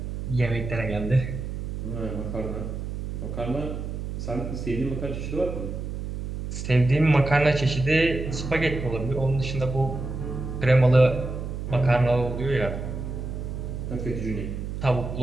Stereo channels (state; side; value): noise; right; hum, 6 dB below the sound